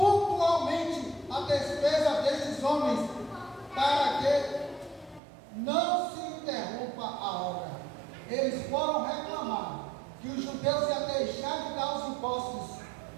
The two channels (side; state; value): left; drops out; at 5.2 s